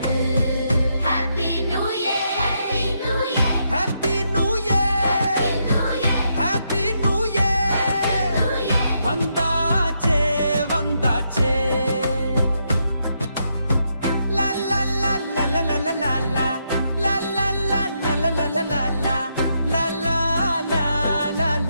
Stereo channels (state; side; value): inverted; both; correlation -0.79